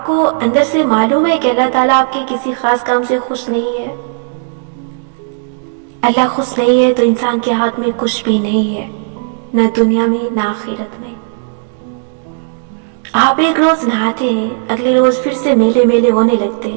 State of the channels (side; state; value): left; silent; digital silence